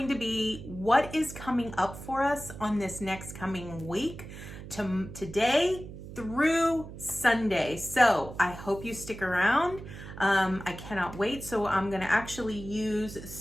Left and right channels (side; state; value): right; noise; hum, 12 dB below the sound